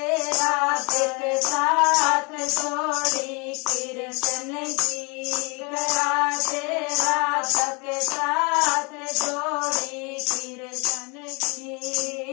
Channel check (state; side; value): quieter; right; 31.1 dB